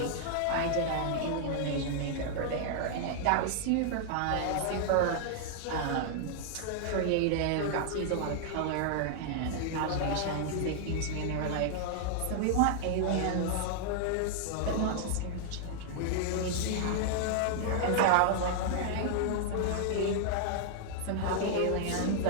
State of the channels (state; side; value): different; both; correlation -0.01